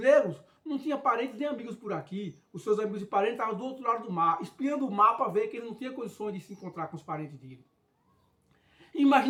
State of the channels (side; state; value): both; identical; correlation 1.00